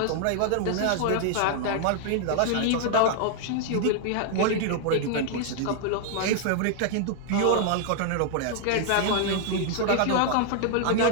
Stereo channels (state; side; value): different; both; correlation 0.00